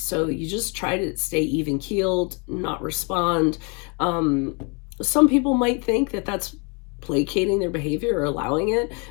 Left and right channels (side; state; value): right; quieter; 33.8 dB